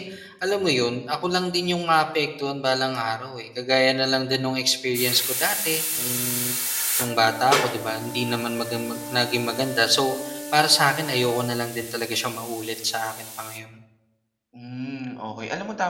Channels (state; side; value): identical; both; correlation 1.00